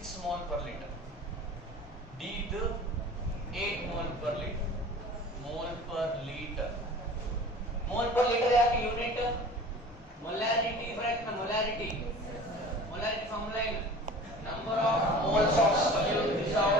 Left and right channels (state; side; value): normal; both; correlation 0.41